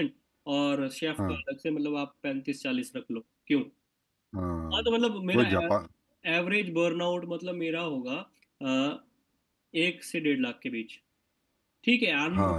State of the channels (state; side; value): identical; both; correlation 1.00